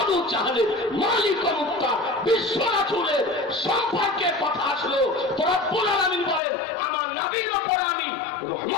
চাহলের, মালিক মুক্তার, বিশ্ব রাসূলের সম্পর্কে কথা আসলো, তো রব্বুল আলামিন বলেন, আমার নবীর উপর আমি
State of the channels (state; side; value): drops out; right; at 6.4 s